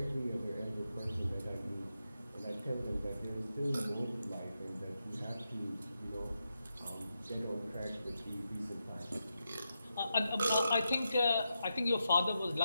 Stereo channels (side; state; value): both; inverted; correlation -0.86